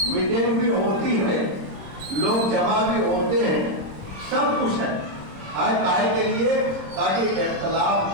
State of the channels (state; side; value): late; left; 26 ms